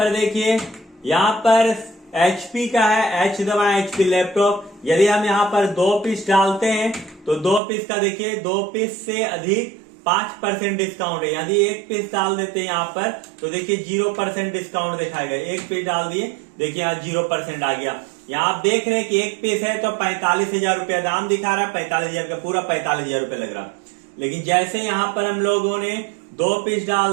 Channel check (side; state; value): left; drops out; at 7.6 s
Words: देखिए, यहाँ पर HP का है, H दबाएं, HP लैपटॉप। यदि हम यहाँ पर 2 पीस डालते हैं तो 2 पीस का देखिए 2 पीस से अधिक 5% डिस्काउंट है। यदि 1 पीस डाल देते हैं यहाँ पर तो देखिए 0% डिस्काउंट दिखाएगा। 1 पीस डाल दिए, देखिए यहाँ 0% आ गया। यहाँ आप देख रहे हैं कि 1 पीस है तो 45,000 रुपया दाम दिखा रहा है, 45,000 का पूरा 45,000 रुपया लग रहा। लेकिन जैसे यहाँ पर हम लोगों ने 2 पीस